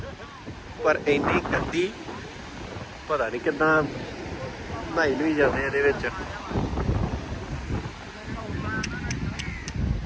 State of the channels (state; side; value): identical; both; correlation 1.00